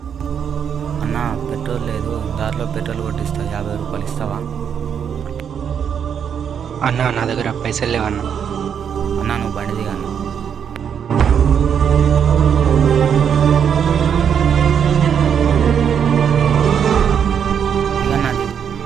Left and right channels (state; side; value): quieter; left; 7.9 dB